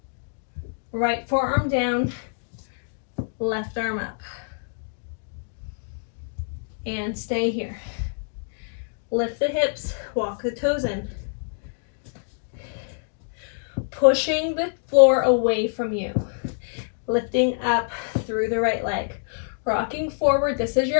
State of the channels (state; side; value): silent; right; digital silence